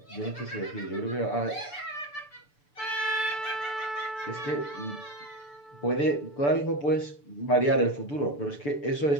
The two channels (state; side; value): late; right; 6.9 ms